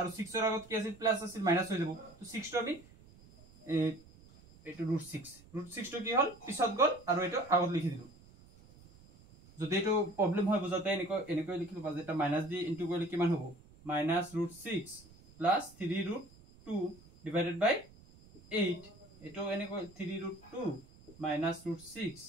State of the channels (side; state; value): right; noise; rumble, 24 dB below the sound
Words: 6 ৰ আগত কি আছিল প্লাস আছিল মাইনাস হৈ যাব তো 6 টো আমি এটো √6 টো কি হল পিছত গল আৰু এটো আগত লিখি দিলো যদি এটো প্ৰবলেম হয় বুজাতে এনেকৈ লিখিলো বাজে এটা মাইনাস দি ইনটু কৰিলে কিমান হ'ব -√6 প্লাস 3√2 ডিভাইডেড বাই 8 এটো এনেকৈ 3√2 minus √6